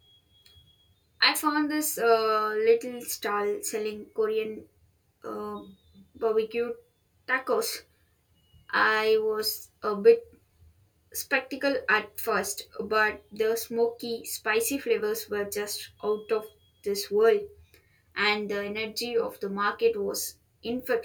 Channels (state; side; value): identical; both; correlation 1.00